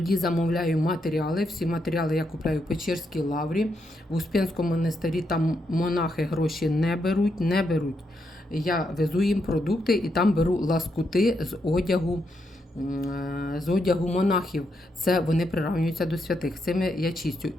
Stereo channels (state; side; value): normal; both; correlation 0.81